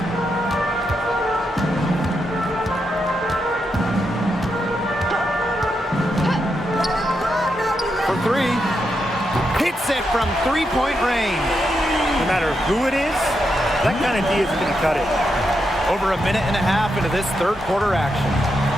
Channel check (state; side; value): normal; both; correlation 0.83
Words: For three. Hits it from three-point range. No matter who it is, that kind of D is going to cut it. Over a minute and a half into this third quarter action.